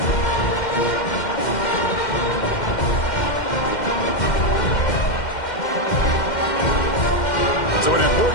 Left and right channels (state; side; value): late; right; 2.1 ms